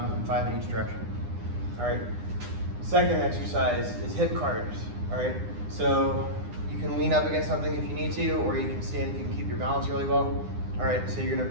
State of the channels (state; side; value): late; left; 9.8 ms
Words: 5 in each direction. All right, second exercise is hip CARs. All right, so you can lean up against something if you need to, or you can stand if you can keep your balance really well. All right, so you're gonna